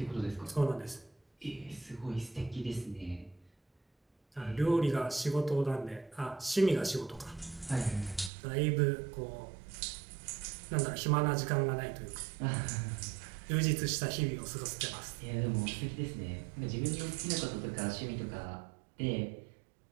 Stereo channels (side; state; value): left; drops out; at 8.3 s